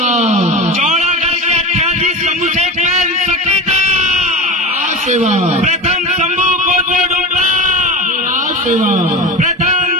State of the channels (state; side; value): normal; both; correlation 0.27